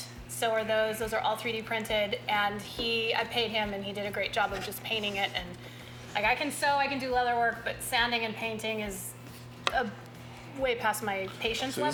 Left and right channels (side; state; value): both; identical; correlation 1.00